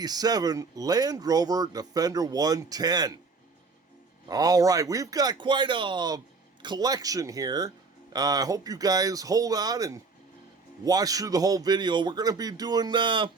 Land Rover Defender 110. All right, we've got quite a collection here. I hope you guys hold on and watch through the whole video. We're going to be doing,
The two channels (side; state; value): left; quieter; 4.3 dB